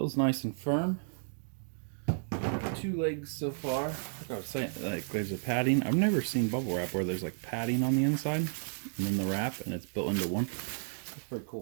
nice and firm. 2 legs so far. Like I was saying, like there's a padding. I've never seen bubble wrap where there's like padding on the inside and then the wrap and it's built into one. That's pretty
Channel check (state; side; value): silent; left; digital silence